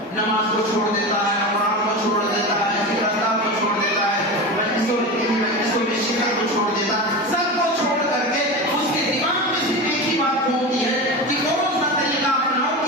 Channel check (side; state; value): both; normal; correlation 0.25